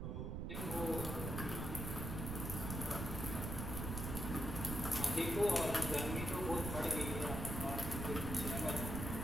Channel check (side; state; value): right; noise; rumble, 3 dB below the sound